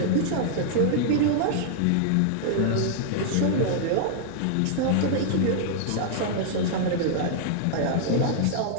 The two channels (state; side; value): different; both; correlation -0.01